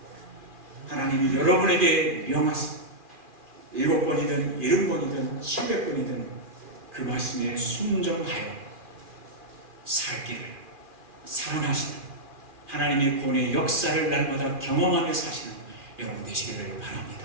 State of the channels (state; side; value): late; left; 2.4 ms